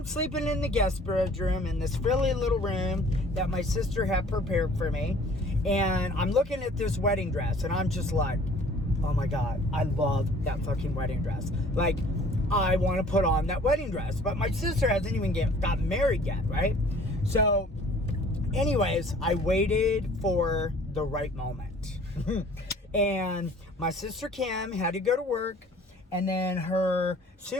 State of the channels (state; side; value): normal; both; correlation 0.52